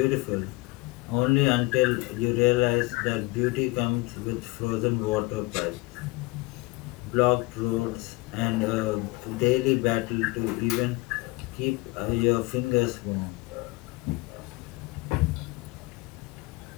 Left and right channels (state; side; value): quieter; right; 23.3 dB